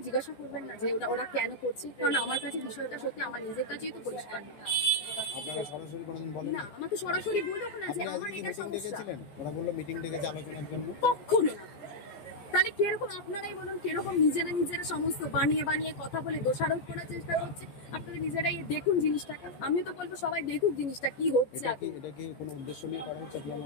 জিজ্ঞাসা করবেন না যে ওরা কেন করছে? কারণ আমার কাছে বিষয়টা সত্যি আমার নিজের কাছেই তো পরিষ্কার না। আমাকে সরাসরি বলো না যে আমার এটা সমস্যা, কখনো না। তাহলে কিরকম আপনারাই বলুন, কিরকম নিজেরা সমস্ত বানিয়ে কথা বলে দোষারোপ করার চেষ্টা করছে। আপনারা নিজেরাই দেখুন জিনিসটাকে। আমি তো বলবো সবাই দেখুক জিনিসটা কি হচ্ছে।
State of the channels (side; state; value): right; late; 14 ms